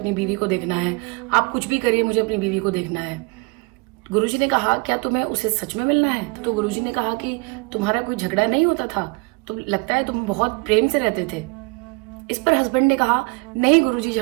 बीवी को देखना है, आप कुछ भी करिए मुझे अपनी बीवी को देखना है। गुरुजी ने कहा क्या तुम्हें उसे सच में मिलना है? तो गुरुजी ने कहा कि तुम्हारा कोई झगड़ा नहीं होता था, तो लगता है तुम बहुत प्रेम से रहते थे। इस पर हस्बैंड ने कहा नहीं गुरुजी,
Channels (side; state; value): left; quieter; 28.6 dB